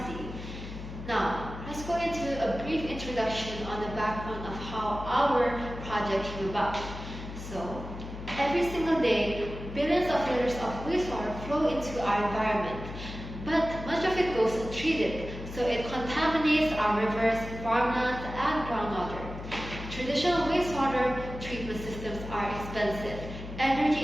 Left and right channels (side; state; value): left; noise; hum, 10 dB below the sound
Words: Now, let's go into a brief introduction on the background of how our project came about. So, every single day, billions of liters of wastewater flow into our environment, but much of it goes untreated, so it contaminates our rivers, farmlands, and groundwater. Traditional wastewater treatment systems are expensive,